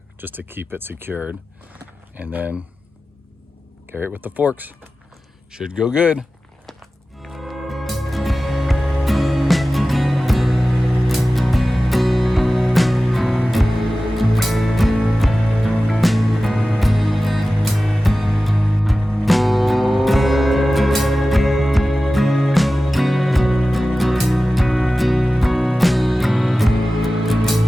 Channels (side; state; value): both; normal; correlation 0.95